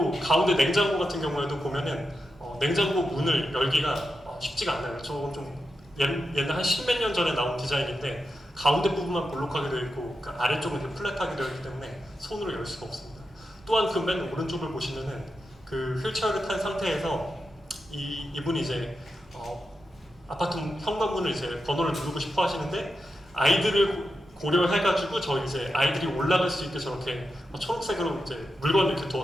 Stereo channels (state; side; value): normal; both; correlation 0.88